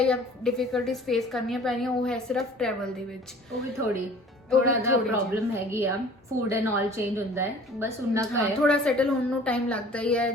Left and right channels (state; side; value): normal; both; correlation 0.48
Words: ਜਾਂ ਡਿਫਿਕਲਟੀਜ਼ ਫੇਸ ਕਰਨੀਆਂ ਪੈਣੀਆਂ ਉਹ ਹੈ ਸਿਰਫ ਟਰੈਵਲ ਦੇ ਵਿੱਚ। ਉਹ ਵੀ ਥੋੜਾ ਜਿਹਾ ਪ੍ਰੋਬਲਮ ਹੈਗੀ ਆ, ਫੂਡ ਐਂਡ ਆਲ ਚੇਂਜ ਹੁੰਦਾ ਹੈ, ਬਸ ਉਨਾ ਕੁ ਹੈ। ਥੋੜਾ ਸੈਟਲ ਹੋਣ ਨੂੰ ਟਾਈਮ ਲੱਗਦਾ ਹੀ ਹੈ।